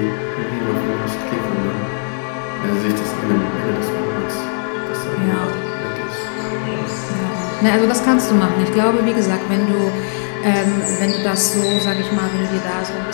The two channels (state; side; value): silent; right; digital silence